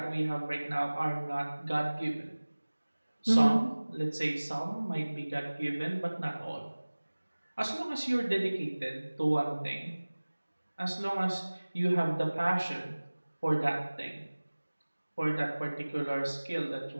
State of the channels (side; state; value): both; inverted; correlation -1.00